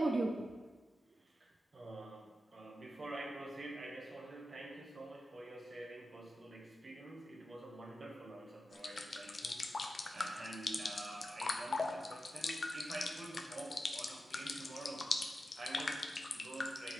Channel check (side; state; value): both; normal; correlation 0.91